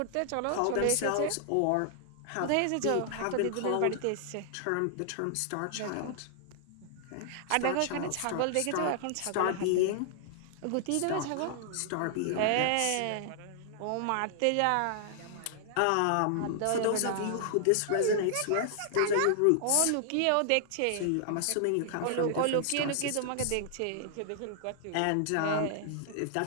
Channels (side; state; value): both; different; correlation -0.01